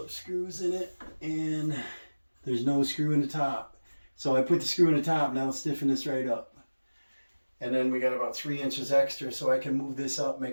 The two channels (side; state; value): both; inverted; correlation -1.00